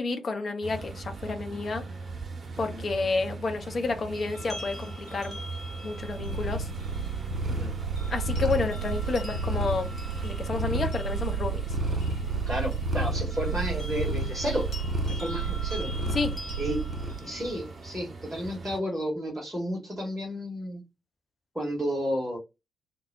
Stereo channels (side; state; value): both; normal; correlation 0.59